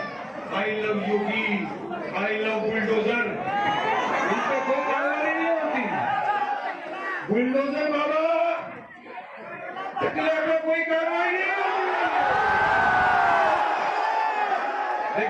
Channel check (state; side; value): identical; both; correlation 1.00